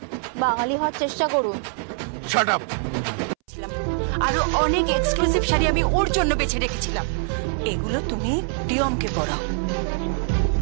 বাঙালি হওয়ার চেষ্টা করুন। Shut up. আরো অনেক এক্সক্লুসিভ শাড়ি আমি ওর জন্য বেছে রেখেছিলাম, এগুলো তুমি প্রিয়মকে পরাও।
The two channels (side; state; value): left; silent; 62 dB below the other